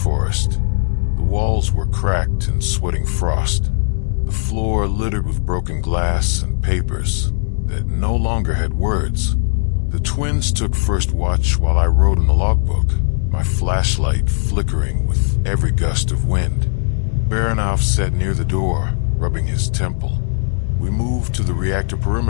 The walls were cracked and sweating frost, the floor littered with broken glass and papers that no longer had words. The twins took first watch while I wrote in the logbook, my flashlight flickering with every gust of wind. Baranov sat near the door, rubbing his temple. "We move to the reactor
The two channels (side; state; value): right; silent; digital silence